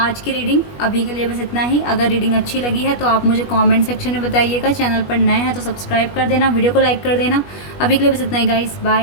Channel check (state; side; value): late; right; 21 ms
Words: की रीडिंग। अभी के लिए बस इतना ही। अगर रीडिंग अच्छी लगी है तो आप मुझे कमेंट सेक्शन में बताइएगा। चैनल पर नए हैं तो सब्सक्राइब कर देना, वीडियो को लाइक कर देना। अभी के लिए बस इतना ही गाइज़,